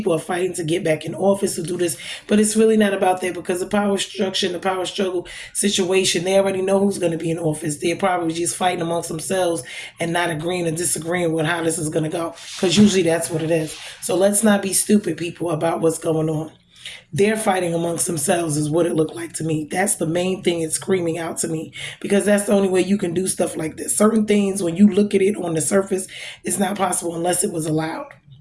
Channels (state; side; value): identical; both; correlation 1.00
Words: are fighting to get back in office to do this, but it's really not about that, because the power structure and the power struggle situation, they already know who's going to be in office. They're probably just fighting amongst themselves and not agreeing or disagreeing with how this is going to go, because usually that's what it is. So let's not be stupid, people, about what's going on. They're fighting amongst themselves is what it looked like to me. That's the main thing it's screaming out to me, because that's the only way you can do stuff like this. Certain things, when you look at it on the surface, it's not possible unless it was allowed.